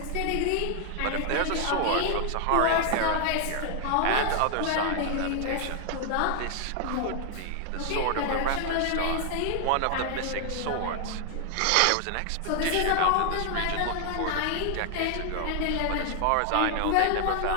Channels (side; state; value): both; different; correlation 0.00